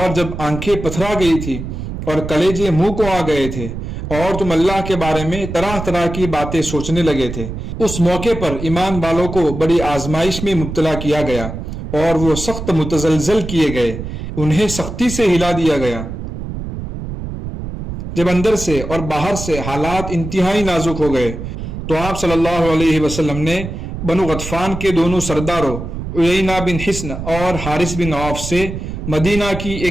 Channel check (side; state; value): right; noise; rumble, 7 dB below the sound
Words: جب آنکھیں پتھرا گئی تھی اور کلیجے منہ کو آ گئے تھے اور تم اللہ کے بارے میں طرح طرح کی باتیں سوچنے لگے تھے۔ اس موقع پر ایمان والوں کو بڑی آزمائش میں مبتلا کیا گیا اور وہ سخت متزلزل کیے گئے، انہیں سختی سے ہلا دیا گیا۔ جب اندر سے اور باہر سے حالات انتہائی نازک ہو گئے تو آپ صلی اللہ علیہ وسلم نے بنو غطفان کے دونوں سرداروں عیینہ بن حصن اور حارث بن عوف سے مدینہ کی